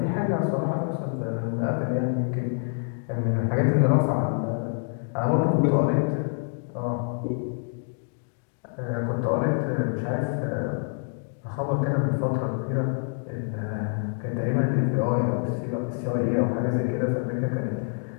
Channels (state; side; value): silent; right; 61 dB below the other